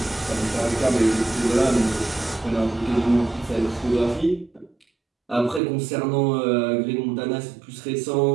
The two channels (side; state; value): left; drops out; at 5.6 s